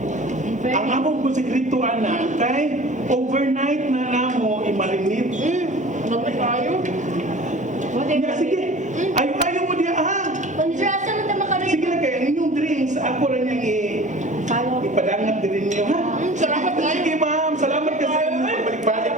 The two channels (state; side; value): normal; both; correlation 0.42